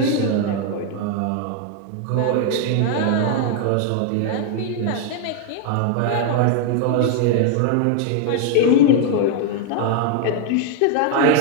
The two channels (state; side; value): different; both; correlation 0.00